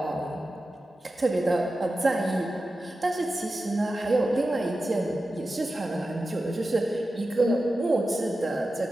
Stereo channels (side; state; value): both; normal; correlation 0.93